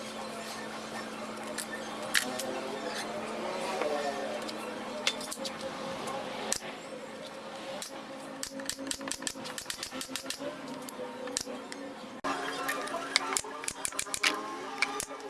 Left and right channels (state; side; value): identical; both; correlation 1.00